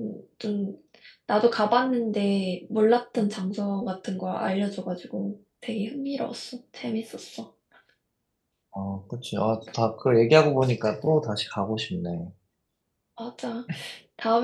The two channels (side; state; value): both; identical; correlation 1.00